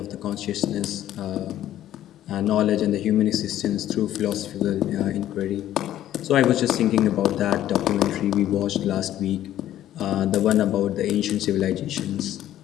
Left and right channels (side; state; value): right; quieter; 12.5 dB